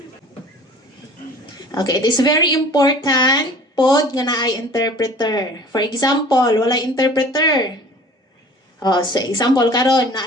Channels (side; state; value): both; normal; correlation 0.46